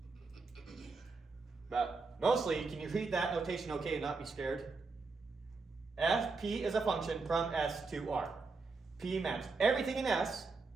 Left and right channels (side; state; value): left; quieter; 4.1 dB